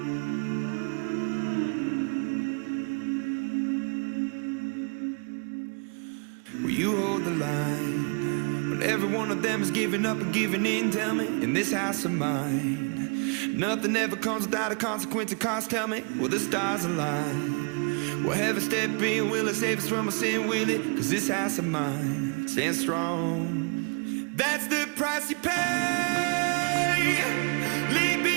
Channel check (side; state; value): left; quieter; 36.6 dB